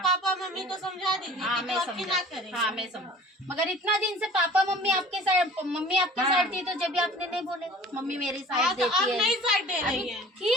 मम्मी को समझा दीजिए हाँ, कि मैं तो आपकी ना समझा। करें। हाँ, मैं समझ। मगर इतना दिन से पापा मम्मी आपके साइड, मम्मी आपके साइड थी, तो जब भी आपने नहीं बोले मम्मी मेरी साइड हाँ, तो अब देती है, नहीं साइड दे रही है।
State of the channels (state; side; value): normal; both; correlation 0.45